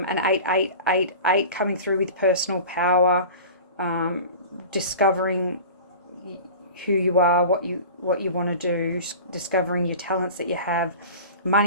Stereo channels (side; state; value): both; inverted; correlation -0.37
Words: coming through with personal power, discovering who you are, what you want to do, discovering your talents that you have,